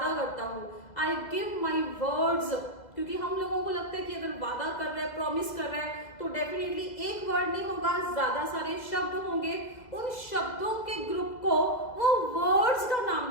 करता हूँ, आई गिव माई वर्ड्स। क्योंकि हम लोगों को लगता है कि अगर वादा कर रहे हैं, प्रॉमिस कर रहे हैं, तो डेफिनेटली एक वर्ड नहीं होगा, ज्यादा सारे शब्द होंगे। उन शब्दों के ग्रुप को वो वर्ड्स का नाम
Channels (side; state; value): right; late; 2.0 ms